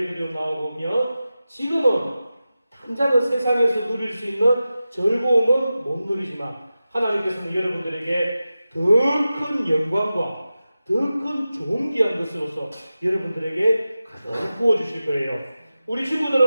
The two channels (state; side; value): inverted; both; correlation -0.94